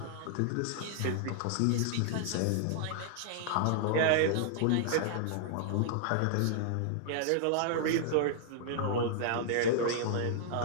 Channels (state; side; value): different; both; correlation -0.01